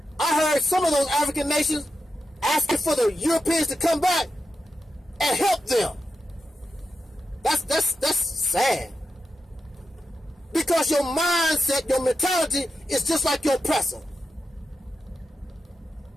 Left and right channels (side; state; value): both; normal; correlation 0.88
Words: I heard some of those African nations asking for the Europeans to come back and help them. That's sad. Because your mindset, your mentality is just like your oppressor.